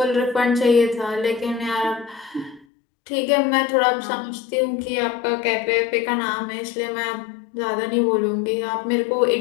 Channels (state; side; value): drops out; right; at 2.7 s